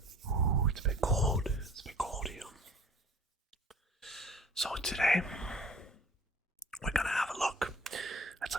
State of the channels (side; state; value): both; normal; correlation 0.49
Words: It's been cold. It's been cold here. So today, we're gonna have a look at